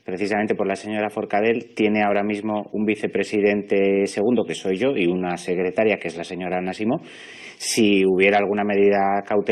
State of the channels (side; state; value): both; identical; correlation 1.00